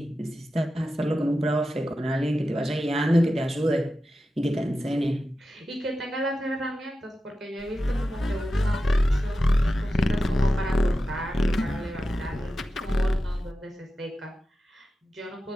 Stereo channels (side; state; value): both; normal; correlation 0.92